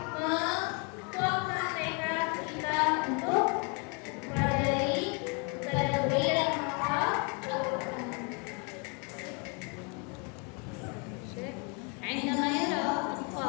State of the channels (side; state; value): right; quieter; 33.6 dB